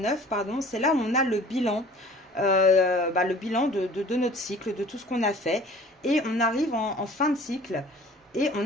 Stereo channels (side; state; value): both; normal; correlation 0.47